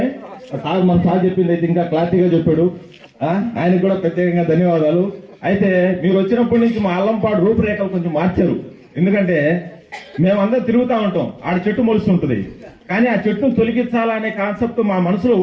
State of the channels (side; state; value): both; identical; correlation 1.00